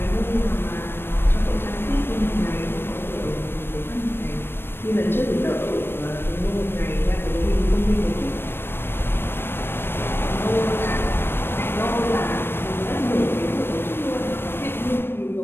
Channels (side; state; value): right; late; 0.11 ms